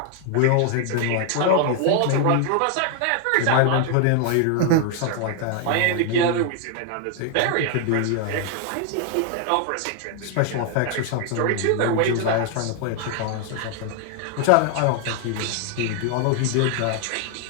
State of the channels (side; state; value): both; different; correlation 0.00